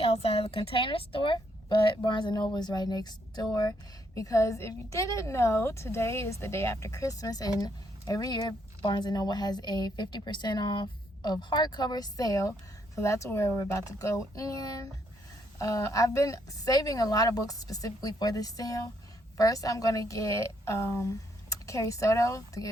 outside of the Container Store, but Barnes & Noble is right next door because if you didn't know, today is the day after Christmas, and every year Barnes & Noble has a 50% off of hardcover sale, so that's where we're about to go in. I've been saving a lot of books specifically for this sale. First, I'm going to get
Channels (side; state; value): both; normal; correlation 0.73